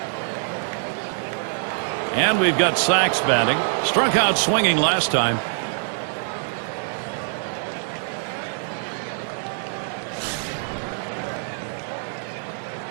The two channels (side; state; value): left; silent; digital silence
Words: And we've got Sachs batting. Struck out swinging last time.